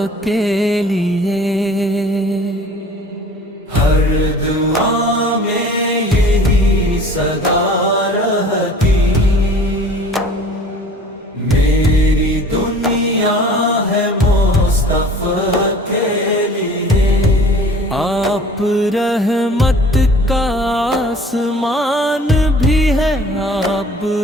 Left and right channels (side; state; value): both; normal; correlation 0.47